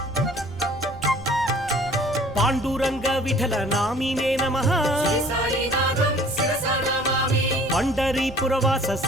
పాండురంగ విఠల నామినే నమః శ్రీ సాయినాథం శిరసా నమామి పండరీపురవాస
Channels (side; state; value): right; noise; rumble, 15 dB below the sound